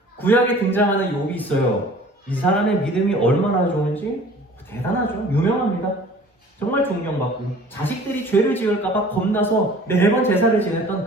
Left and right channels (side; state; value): both; normal; correlation 0.48